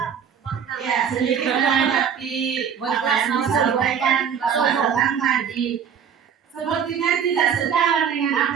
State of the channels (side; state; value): left; quieter; 7.7 dB